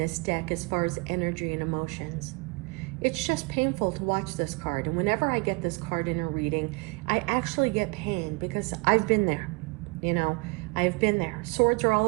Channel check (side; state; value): left; quieter; 29.4 dB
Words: deck as far as energy and emotions. It's just painful to watch this card. And whenever I get this card in a reading, I actually get pain because I've been there. You know, I've been there. Swords are all